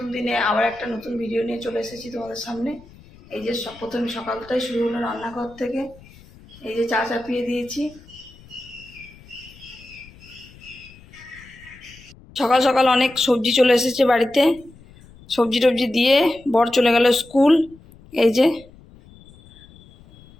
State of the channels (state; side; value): noise; left; rumble, 23 dB below the sound